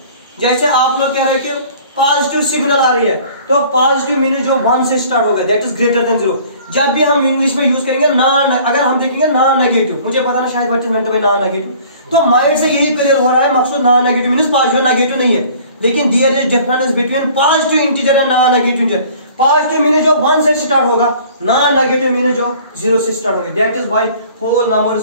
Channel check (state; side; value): inverted; both; correlation -0.50